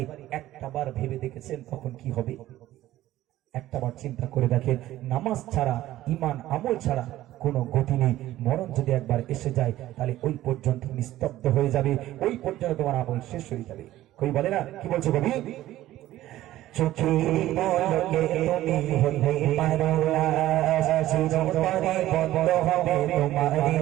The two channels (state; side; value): quieter; left; 14.7 dB